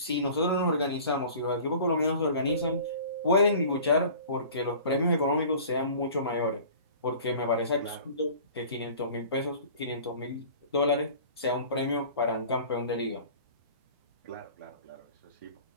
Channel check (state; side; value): inverted; both; correlation -0.44